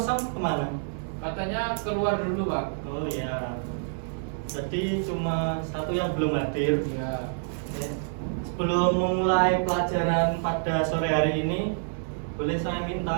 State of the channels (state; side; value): silent; left; digital silence